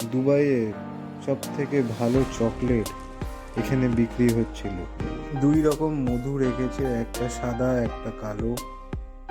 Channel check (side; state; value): both; identical; correlation 1.00